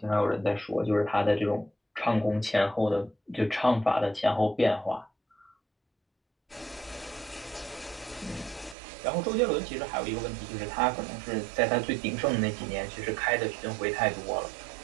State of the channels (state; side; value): drops out; left; at 8.8 s